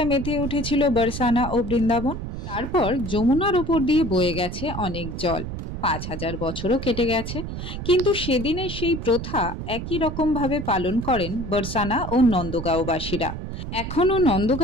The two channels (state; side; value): noise; right; rumble, 7 dB below the sound